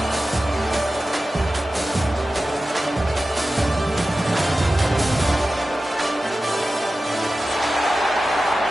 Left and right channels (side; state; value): both; normal; correlation 0.94